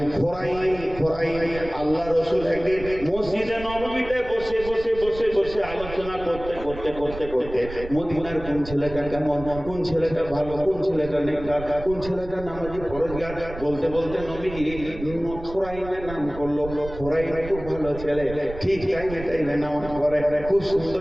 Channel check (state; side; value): noise; right; rumble, 13 dB below the sound